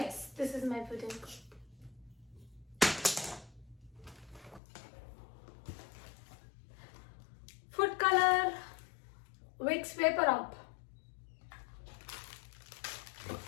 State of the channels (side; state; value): right; drops out; at 4.6 s